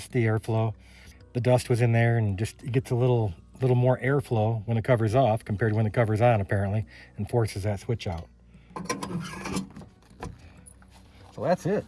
the airflow. The dust was in there, and just it gets a little more airflow when the cover's off compared to when the cover's on, apparently, and forces that switch out. So that's it.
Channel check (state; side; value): identical; both; correlation 1.00